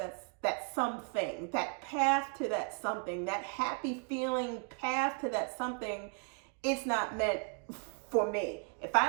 something, that path to that something, that happy feeling path to that something, it's not meant for me. If I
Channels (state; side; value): quieter; left; 38.8 dB